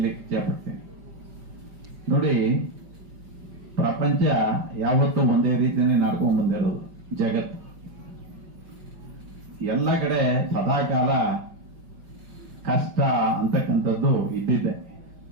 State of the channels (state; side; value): late; left; 5.4 ms